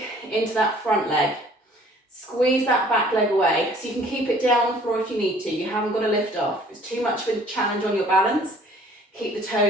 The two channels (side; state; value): both; normal; correlation 0.55